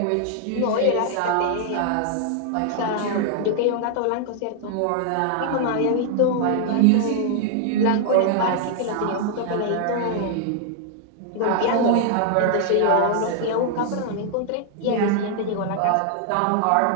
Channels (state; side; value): different; both; correlation 0.00